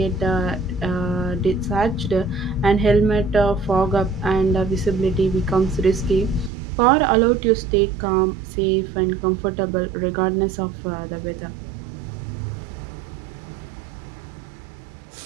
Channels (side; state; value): left; drops out; at 6.5 s